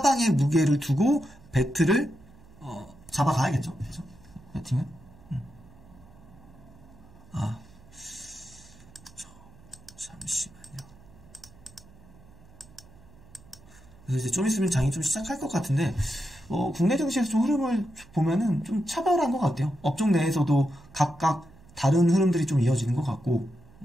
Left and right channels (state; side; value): noise; right; hum, 24 dB below the sound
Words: 무게를 두고 배트를 잡아가야겠죠. 그죠? 배팅은? 잠시만요. 그래서 이제 좀 있으면 장이 좀 시작할 것 같은데, 국내 증시에서 좀 흐름을 보면은 좀 차별한 것 같아요. 업종 내에서도 각각 다른 흐름들이 좀 이어지는 것 같고,